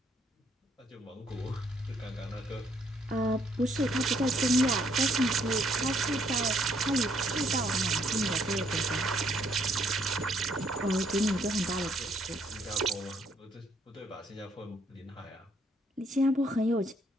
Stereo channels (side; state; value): both; normal; correlation 0.69